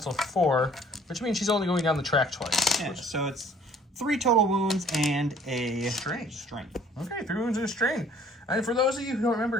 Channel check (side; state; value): both; normal; correlation 0.56